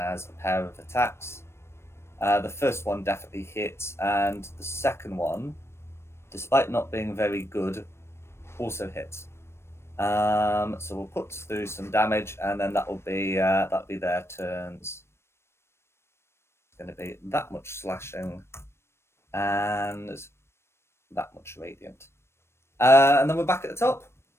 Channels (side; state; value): right; late; 0.12 ms